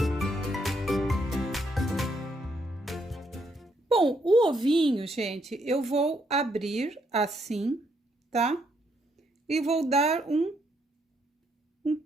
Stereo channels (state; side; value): normal; both; correlation 0.74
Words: Bom, o ovinho, gente, eu vou abrir assim, tá? E vou dar um